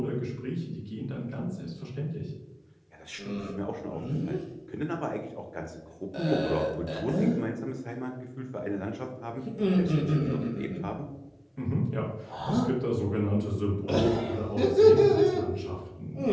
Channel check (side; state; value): both; identical; correlation 1.00